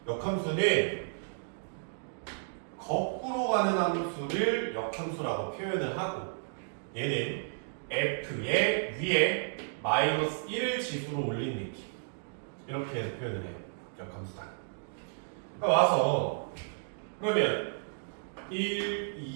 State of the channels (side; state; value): left; silent; digital silence